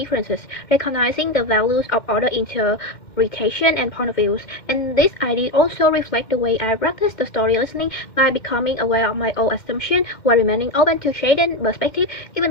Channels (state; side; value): late; right; 2.1 ms